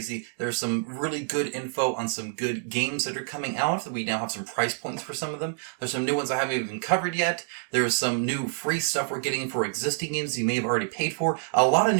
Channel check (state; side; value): silent; left; digital silence